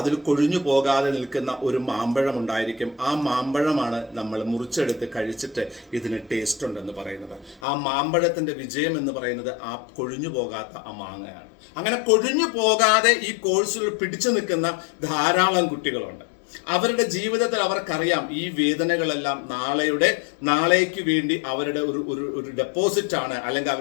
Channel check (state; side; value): drops out; right; at 7.6 s